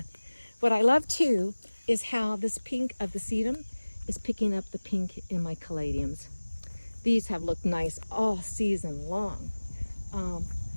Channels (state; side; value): inverted; both; correlation -1.00